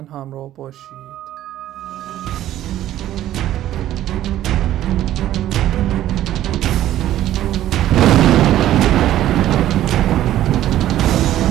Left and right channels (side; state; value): left; quieter; 13.0 dB